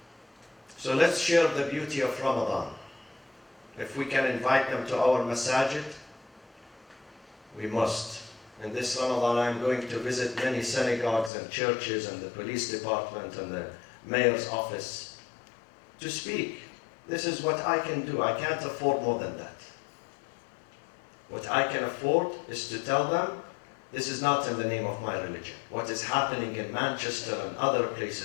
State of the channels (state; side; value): drops out; right; at 11.3 s